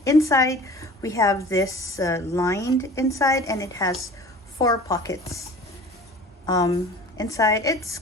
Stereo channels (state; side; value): normal; both; correlation 0.42